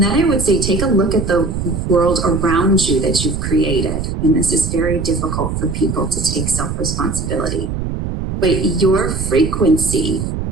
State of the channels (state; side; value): noise; right; rumble, 4 dB below the sound